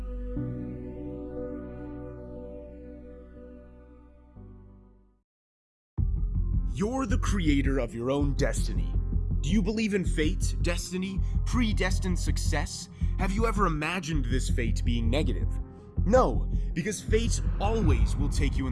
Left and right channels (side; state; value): both; identical; correlation 1.00